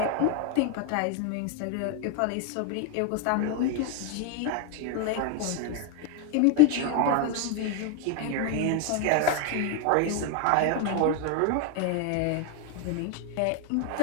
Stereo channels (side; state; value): both; different; correlation 0.01